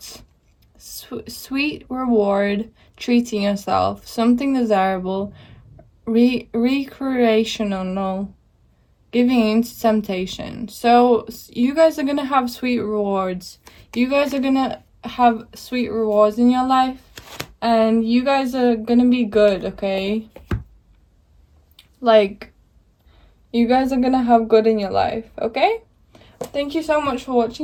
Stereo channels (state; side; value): identical; both; correlation 1.00